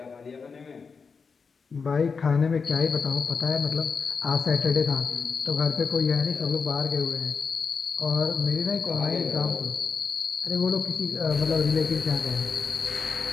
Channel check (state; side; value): quieter; right; 5.3 dB